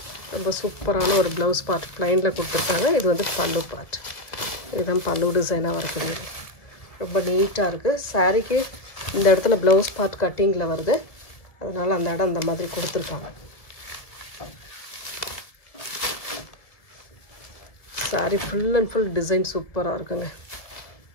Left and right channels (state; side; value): late; right; 1.7 ms